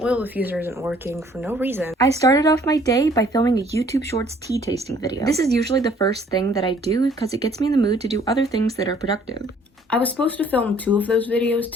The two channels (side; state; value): both; normal; correlation 0.59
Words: oil diffuser isn't working for no reason. I started off my day by filming a YouTube Shorts tea tasting video. This is usually the first thing that I do because it gets me in the mood to do other things that are productive. I was supposed to film 2 of those videos